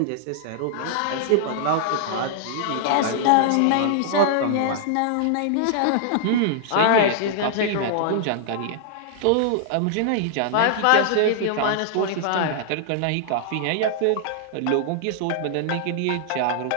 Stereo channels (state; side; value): different; both; correlation -0.01